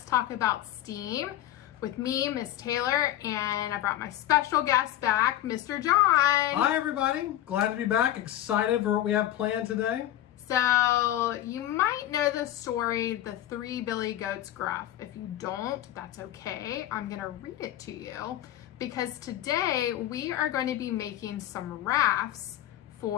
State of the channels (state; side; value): quieter; right; 13.0 dB